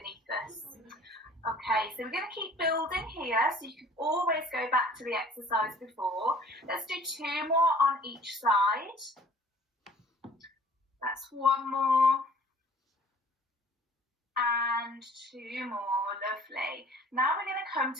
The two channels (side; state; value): both; normal; correlation 0.52